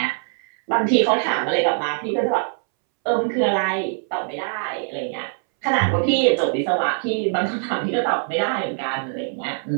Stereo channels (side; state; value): left; silent; 64 dB below the other